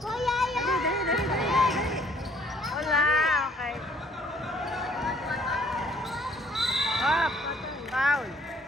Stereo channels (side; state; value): both; normal; correlation 0.60